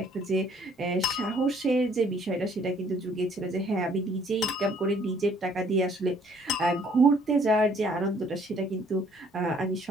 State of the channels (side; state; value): both; normal; correlation 0.61